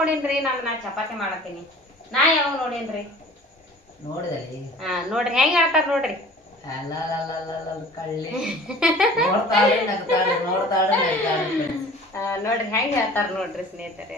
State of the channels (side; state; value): both; normal; correlation 0.46